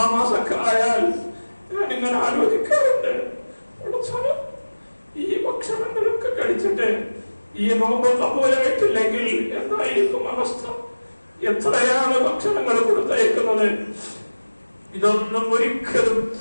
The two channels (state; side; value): inverted; both; correlation -1.00